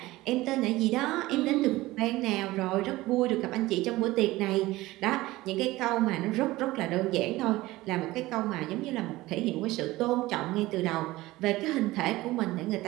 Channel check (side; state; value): left; quieter; 18.5 dB